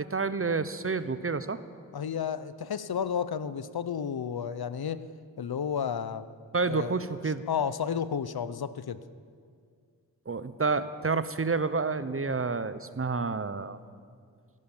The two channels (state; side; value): normal; both; correlation -0.09